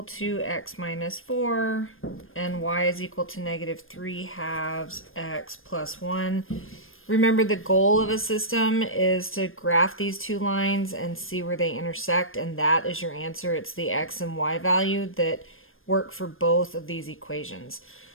to x minus 4 and y is equal to negative 3 halves x plus 1. Remember, the goal of a system is to graph these two lines and see where they intersect, and that is your answer. It's the x and y value that work for both of these equations.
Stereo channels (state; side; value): late; right; 0.60 ms